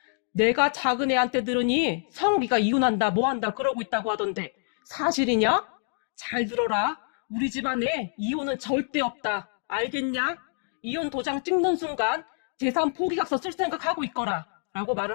내가 작은 애한테 들으니 성욱이가 이혼한다 뭐한다 그러고 있다고 하던데 사실이냐? 잘 들어라. 우리 집안에 이혼은 절대 없다. 알겠냐? 이혼 도장 찍는 순간 재산 포기각서 쓸 생각하고 있거라. 라고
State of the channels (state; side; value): silent; right; 60 dB below the other